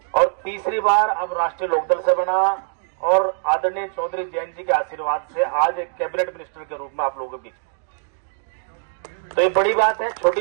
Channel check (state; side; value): silent; left; digital silence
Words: और तीसरी बार अब राष्ट्रीय लोकदल से बना। और आदरणीय चौधरी जैन जी के आशीर्वाद से आज एक कैबिनेट मिनिस्टर के रूप में आप लोगों के बीच में। तो ये बड़ी बात है, छोटी